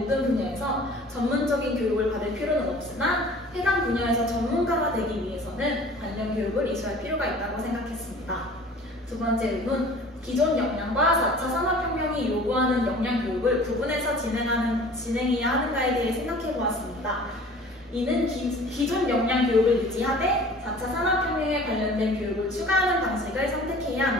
분야에서 전문적인 교육을 받을 필요는 없으나 해당 분야에서 전문가가 되기 위해서는 관련 교육을 이수할 필요가 있다고 생각했습니다. 두 번째 의문, 기존 역량과 4차 산업혁명이 요구하는 역량 교육을 구분해서 진행해야 하는가에 대해 생각해 보았습니다. 이는 기존 역량 교육을 유지하되 4차 산업혁명에 관련된 교육을 추가하는 방식을 선택해야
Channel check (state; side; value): normal; both; correlation 0.46